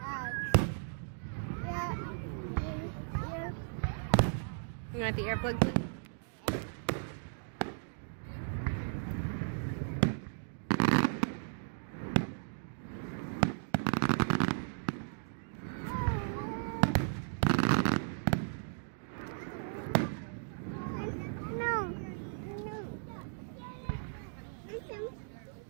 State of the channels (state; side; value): silent; left; digital silence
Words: You want the earplugs in?